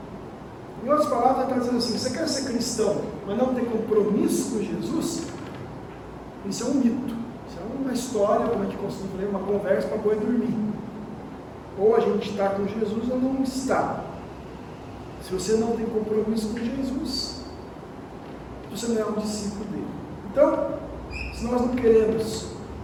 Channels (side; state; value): both; identical; correlation 1.00